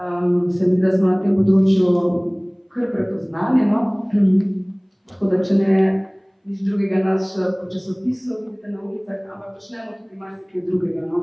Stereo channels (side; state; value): both; identical; correlation 1.00